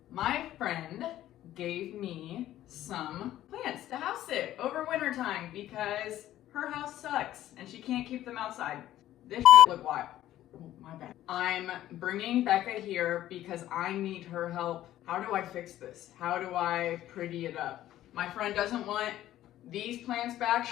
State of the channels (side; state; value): right; quieter; 13.4 dB